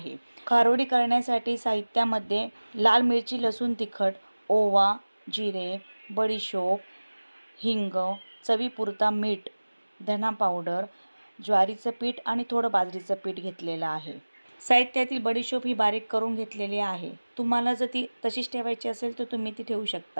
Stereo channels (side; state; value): both; inverted; correlation -1.00